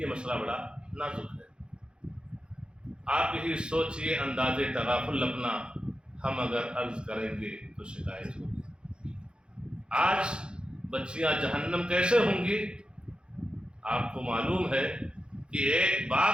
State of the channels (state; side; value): late; left; 0.052 ms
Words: مسئلہ بڑا نازک ہے۔ آپ یہی سوچئے، انداز تغافل اپنا ہم اگر عرض کریں گے تو شکایت ہوگی۔ آج بچیاں جہنم کیسے ہوں گی؟ آپ کو معلوم ہے کہ ایک